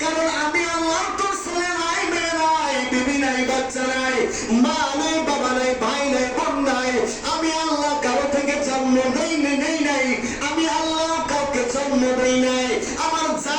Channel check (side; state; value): both; identical; correlation 1.00